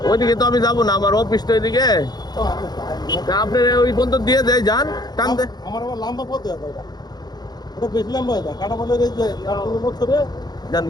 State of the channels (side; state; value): right; late; 0.20 ms